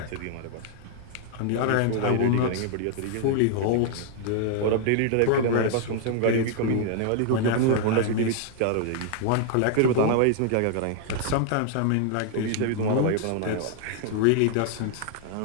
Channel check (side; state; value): both; different; correlation 0.00